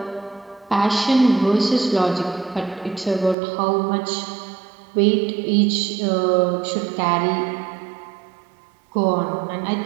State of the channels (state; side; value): drops out; left; at 3.4 s